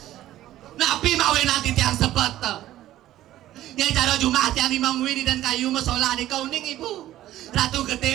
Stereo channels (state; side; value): quieter; left; 13.9 dB